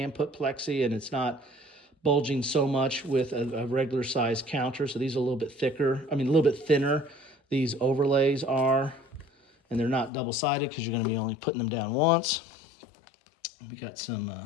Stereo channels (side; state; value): right; drops out; at 10.1 s